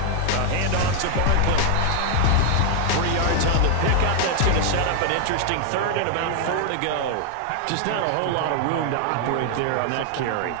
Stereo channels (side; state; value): both; different; correlation 0.00